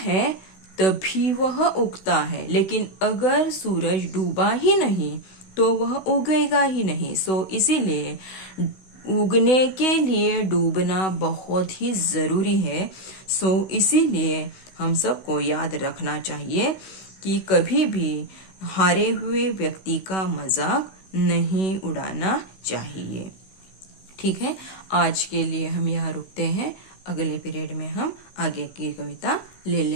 तभी वह उगता है। लेकिन अगर सूरज डूबा ही नहीं तो वह उगेगा ही नहीं। सो इसीलिए उगने के लिए डूबना बहुत ही जरूरी है। सो इसीलिए हम सबको याद रखना चाहिए कि कभी भी हारे हुए व्यक्ति का मजाक नहीं उड़ाना चाहिए। ठीक है, आज के लिए हम यहाँ रुकते हैं। अगले पीरियड में हम आगे की कविता ले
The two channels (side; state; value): right; late; 16 ms